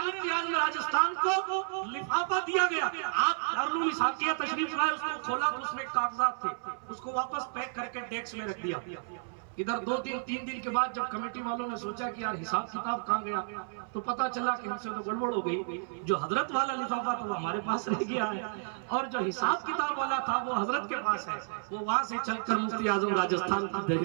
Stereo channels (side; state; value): left; silent; 57 dB below the other